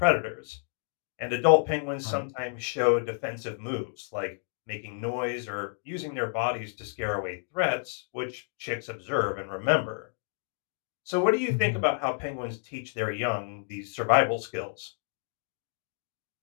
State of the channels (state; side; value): silent; right; digital silence